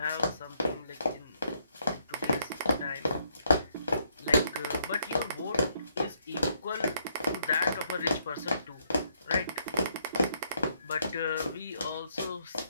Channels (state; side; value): inverted; both; correlation -0.73